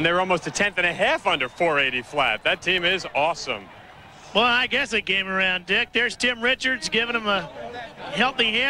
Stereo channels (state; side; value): identical; both; correlation 1.00